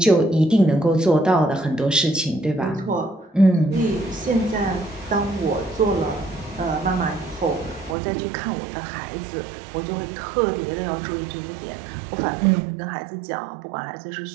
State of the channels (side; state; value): left; drops out; at 8.0 s